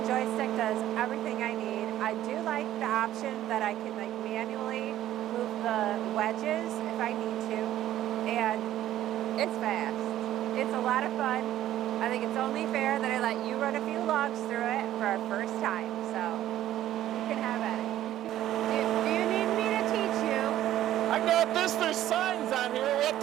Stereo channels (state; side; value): quieter; left; 12.9 dB